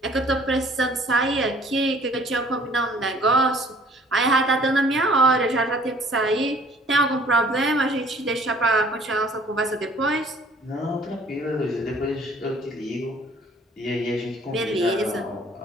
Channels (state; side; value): normal; both; correlation 0.55